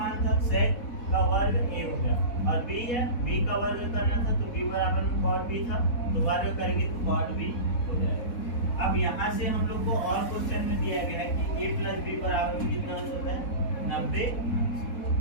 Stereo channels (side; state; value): right; late; 4.1 ms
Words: था sec का वर्ग a हो गया और b है b का वर्ग करना था तो b बराबर में cos b था। तो वर्ग करेंगे तो cos b हो जाएगा। अब यहाँ से हम लोग को और क्वेश्चन में दिया गया है कि a प्लस b बराबर में कितना अंश होता है? 90।